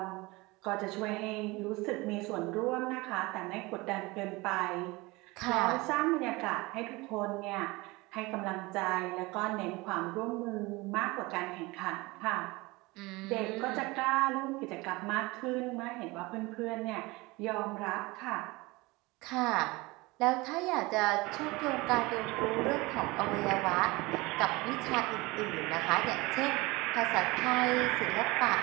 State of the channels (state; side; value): quieter; left; 23.0 dB